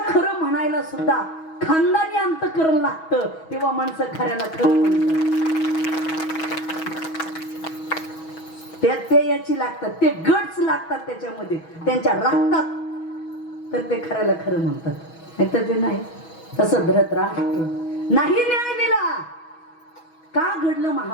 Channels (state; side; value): late; right; 6.2 ms